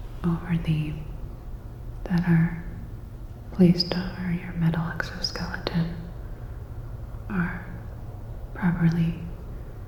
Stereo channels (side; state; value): both; identical; correlation 1.00